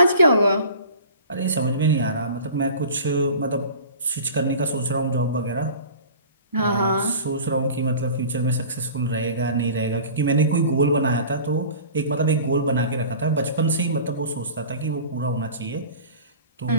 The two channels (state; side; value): inverted; both; correlation -0.41